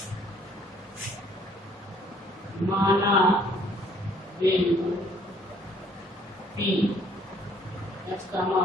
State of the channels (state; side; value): normal; both; correlation 0.61